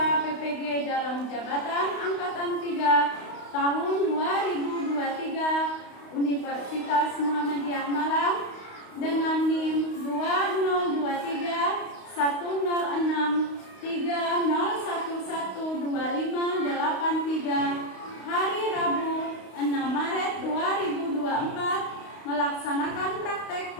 PPG dalam jabatan Angkatan 3 tahun 2023 Universitas Muhammadiyah Malang dengan NIM 2023 106 30112583 hari Rabu 6 Maret 2024 melaksanakan praktek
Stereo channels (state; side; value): late; right; 32 ms